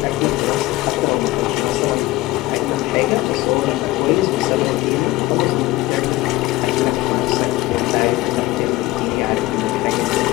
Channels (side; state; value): right; quieter; 18.4 dB